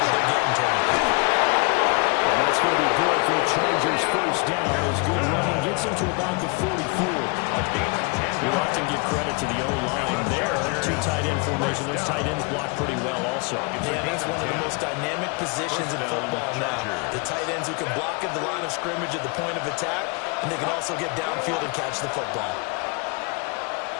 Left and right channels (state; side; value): quieter; right; 30.6 dB